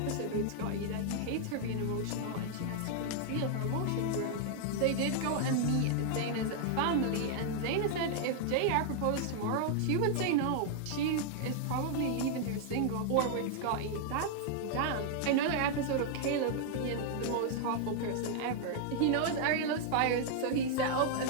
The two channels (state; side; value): different; both; correlation -0.01